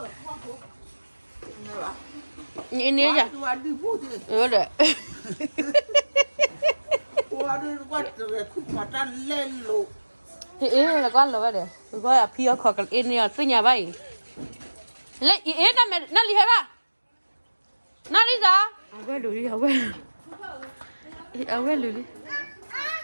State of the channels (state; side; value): inverted; both; correlation -1.00